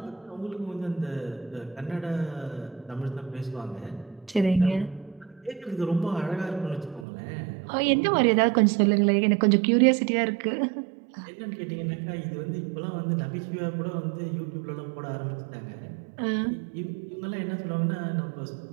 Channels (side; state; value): left; drops out; at 7.1 s